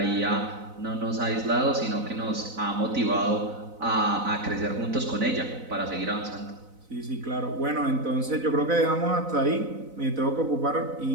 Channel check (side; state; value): left; late; 4.0 ms